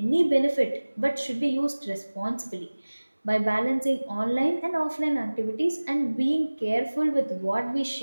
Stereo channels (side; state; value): both; inverted; correlation -1.00